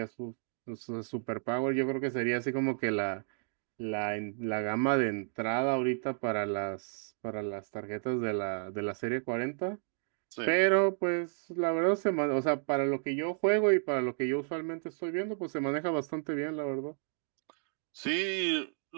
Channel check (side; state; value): left; silent; digital silence